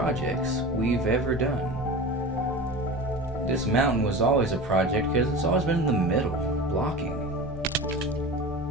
we've ever done. This mountain was always a project because it's always been in the middle, blocking.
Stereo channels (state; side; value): normal; both; correlation 0.32